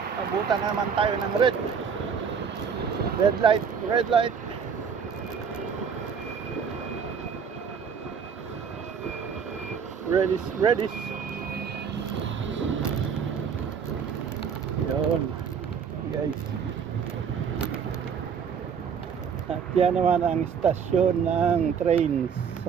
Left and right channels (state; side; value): quieter; left; 6.8 dB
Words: abutan naman tayo ng red. Red light, red light. Redis, redis. Yun, guys. At yan naman ang istasyon ng train sa